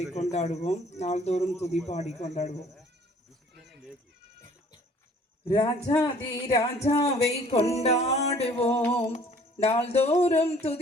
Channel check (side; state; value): both; normal; correlation 0.55